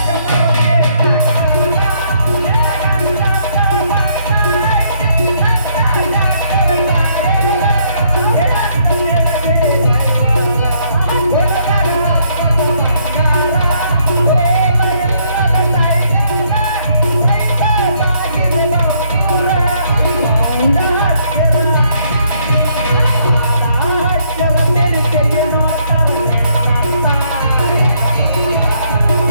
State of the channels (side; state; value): both; inverted; correlation -0.69